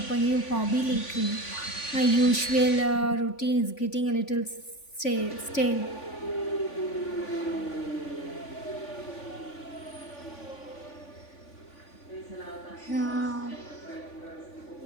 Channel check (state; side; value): late; right; 3.5 ms